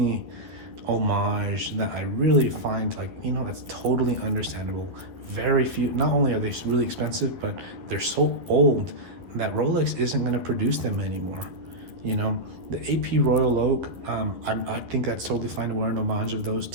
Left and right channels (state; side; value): late; left; 11 ms